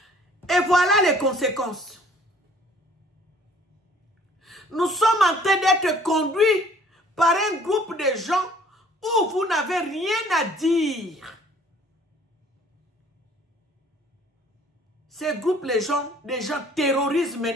et voilà les conséquences. Nous sommes en train d'être conduits par un groupe de gens où vous n'avez rien à dire. Ces groupes, des gens terrorisent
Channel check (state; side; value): normal; both; correlation 0.56